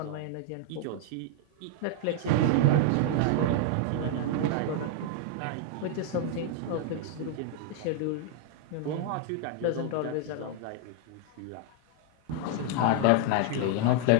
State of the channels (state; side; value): different; both; correlation 0.00